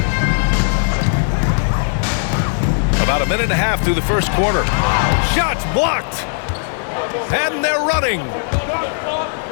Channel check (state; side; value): silent; right; 68 dB below the other